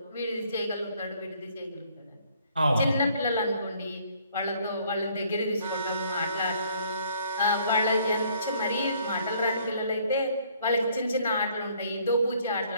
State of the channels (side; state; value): both; inverted; correlation -0.62